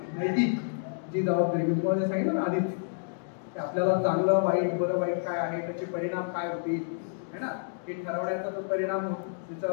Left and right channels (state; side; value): silent; right; digital silence